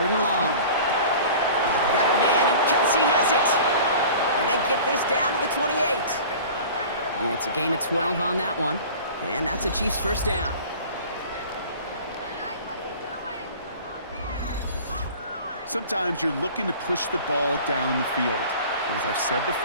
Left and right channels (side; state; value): both; inverted; correlation -0.42